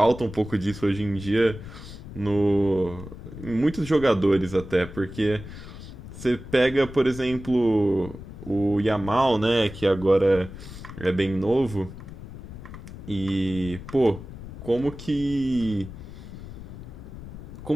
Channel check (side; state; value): left; noise; rumble, 13 dB below the sound